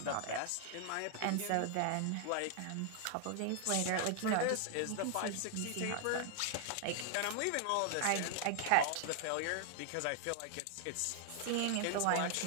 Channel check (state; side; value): different; both; correlation 0.00